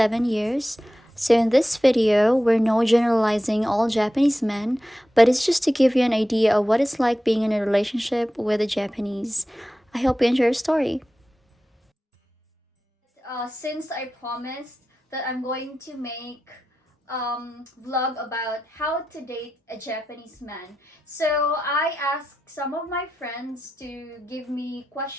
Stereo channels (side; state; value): both; normal; correlation 0.92